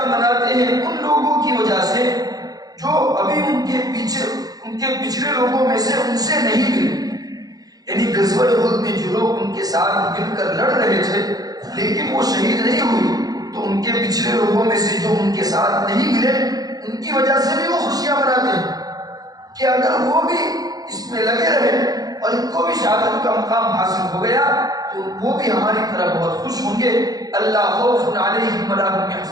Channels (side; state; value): left; late; 0.18 ms